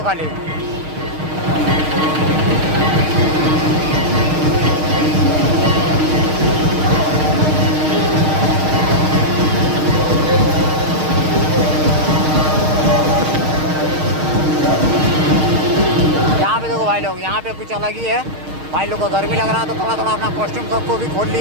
खाली। यहाँ पे देखो भाई लोग, यहाँ पे कुछ अलग ही है। भाई लोग को गर्मी लग रहा है तो थोड़ा थोड़ा अपना कॉस्ट्यूम सबको भी खोल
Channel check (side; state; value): left; late; 6.5 ms